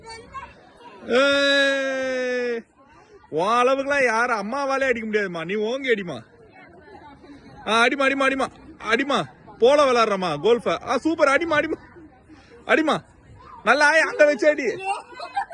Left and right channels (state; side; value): identical; both; correlation 1.00